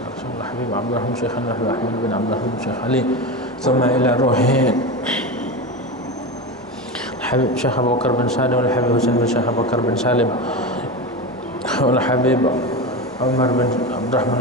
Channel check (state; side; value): normal; both; correlation 0.22